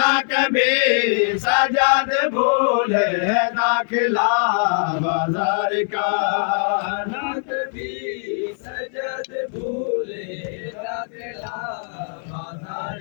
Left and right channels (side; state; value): right; silent; digital silence